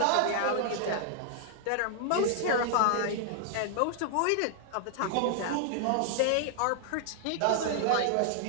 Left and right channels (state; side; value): different; both; correlation 0.00